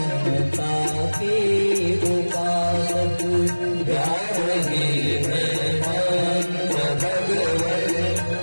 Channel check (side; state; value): both; inverted; correlation -1.00